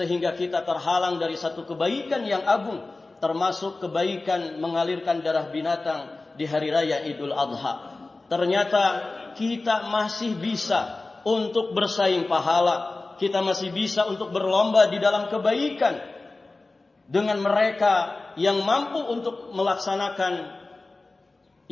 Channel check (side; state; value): right; quieter; 3.3 dB